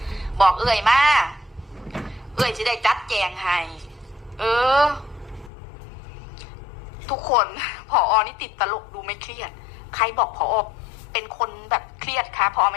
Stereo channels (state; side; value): drops out; right; at 5.5 s